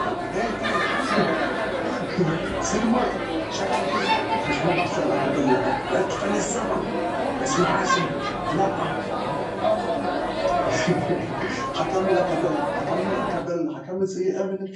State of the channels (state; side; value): identical; both; correlation 1.00